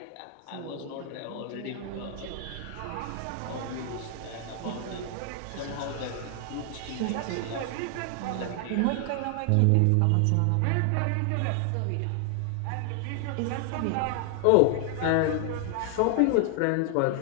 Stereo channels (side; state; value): both; different; correlation 0.00